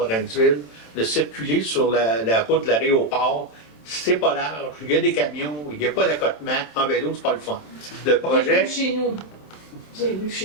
de circuler sur la route de l'aéroport. C'est pas large, il y a des camions, il n'y a pas d'accotement. En vélo, c'est pas le fun. Le projet. J'ai vu chez nous. J'ai vu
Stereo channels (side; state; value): right; late; 27 ms